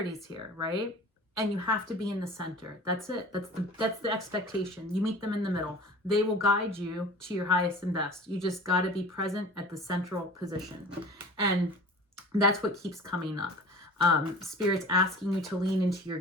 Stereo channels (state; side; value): normal; both; correlation 0.40